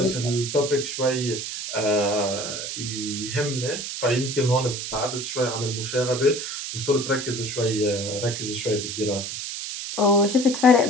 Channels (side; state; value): right; noise; hiss, 6 dB below the sound